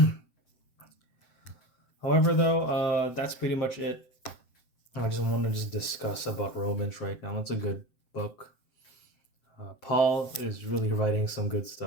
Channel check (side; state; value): right; late; 7.7 ms